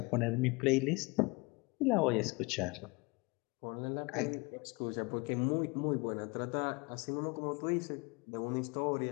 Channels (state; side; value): quieter; right; 27.4 dB